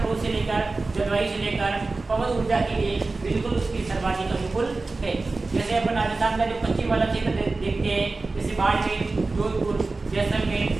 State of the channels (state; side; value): quieter; left; 3.6 dB